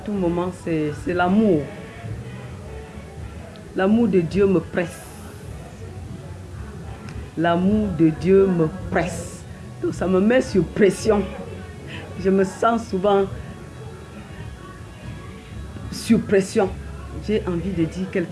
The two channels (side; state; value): both; identical; correlation 1.00